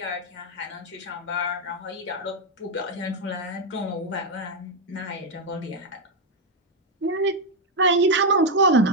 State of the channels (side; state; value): both; normal; correlation 0.02